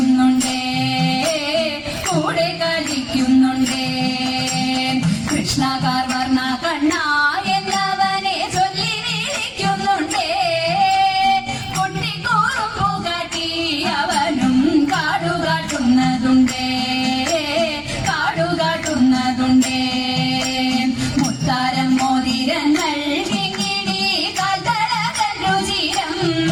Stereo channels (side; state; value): both; identical; correlation 1.00